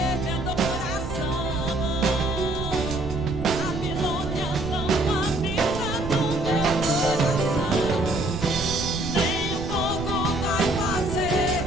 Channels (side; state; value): right; noise; rumble, 7 dB below the sound